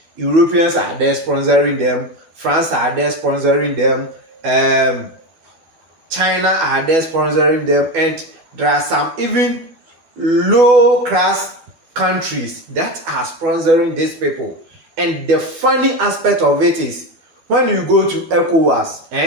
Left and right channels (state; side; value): late; left; 12 ms